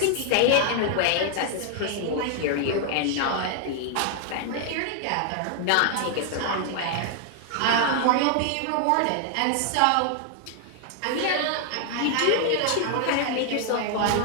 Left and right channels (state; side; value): different; both; correlation 0.00